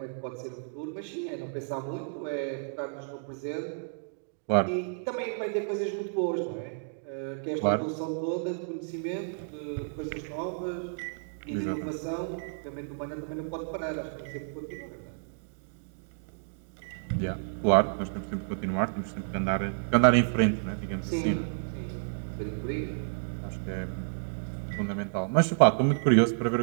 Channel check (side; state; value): left; silent; digital silence